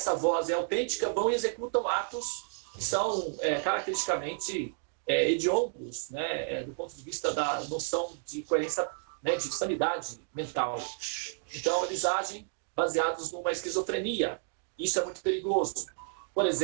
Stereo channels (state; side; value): silent; left; digital silence